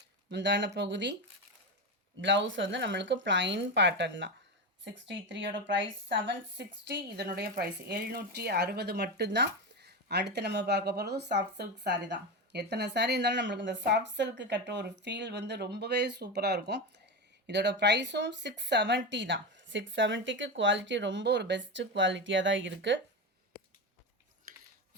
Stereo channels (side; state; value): both; normal; correlation 0.17